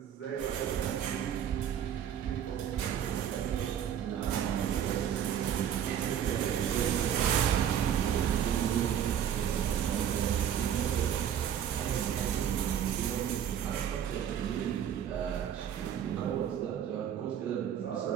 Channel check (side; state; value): left; quieter; 9.4 dB